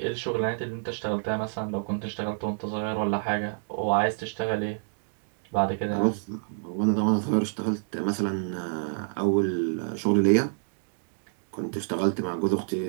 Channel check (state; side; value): silent; left; digital silence